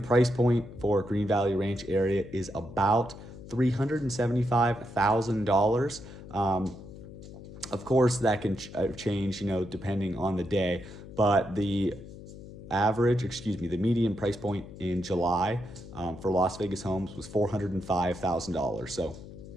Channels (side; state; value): left; noise; hum, 15 dB below the sound